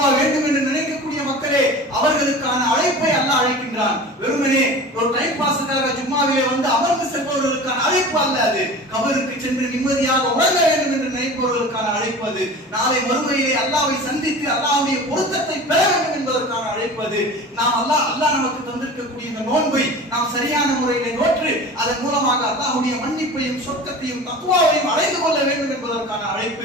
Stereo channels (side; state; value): both; normal; correlation 0.37